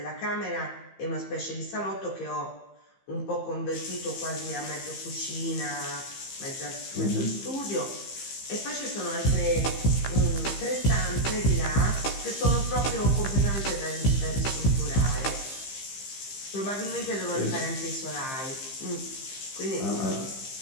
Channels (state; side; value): late; right; 15 ms